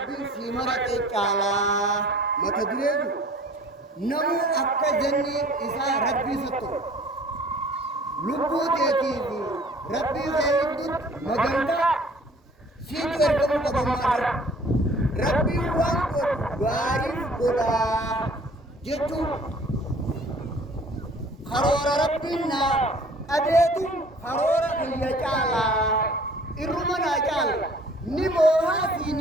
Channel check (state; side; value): normal; both; correlation 0.51